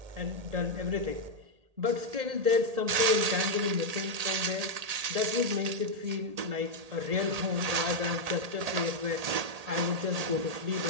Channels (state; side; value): late; left; 1.8 ms